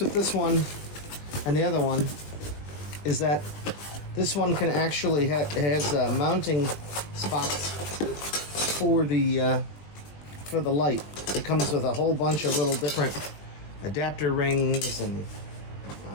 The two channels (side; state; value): right; late; 20 ms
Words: with this one and the other one is that this one can actually has mounting spots for the light. It comes with a whole bunch of little different adapter rings and